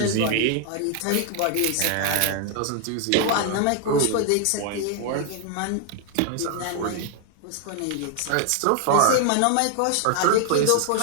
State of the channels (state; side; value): different; both; correlation 0.00